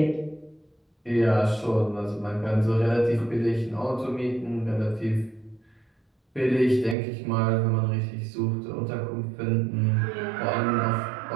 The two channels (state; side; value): drops out; left; at 7.0 s